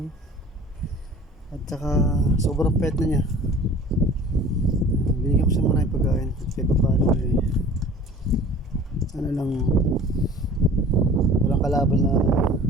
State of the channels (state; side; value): normal; both; correlation 0.45